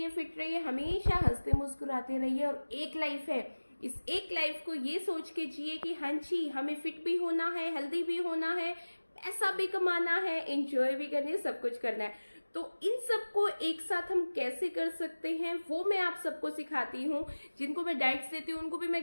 fit रहिए, हमेशा हंसते मुस्कुराते रहिए। और एक लाइफ है, इस एक लाइफ को ये सोच के जिए कि हाँ जी हमें फिट भी होना है, हेल्दी भी होना है, पैसा भी कमाना है, एंजॉय भी करनी है, सब कुछ करना है। तो इन सबको एक साथ हम कैसे कर सकते हैं वो मैं आप सबको सिखाती हूँ। जिनको मैं डाइट्स देती हूँ उनको भी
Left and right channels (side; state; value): both; inverted; correlation -1.00